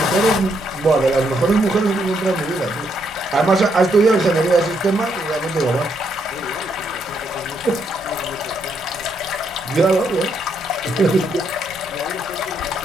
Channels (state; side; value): normal; both; correlation 0.76